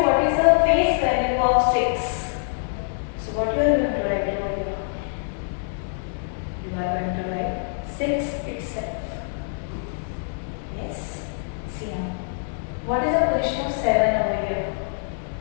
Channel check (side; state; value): right; silent; digital silence